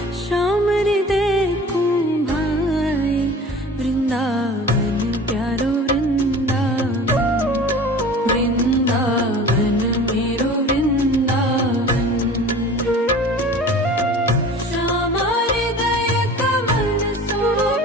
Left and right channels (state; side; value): normal; both; correlation 0.41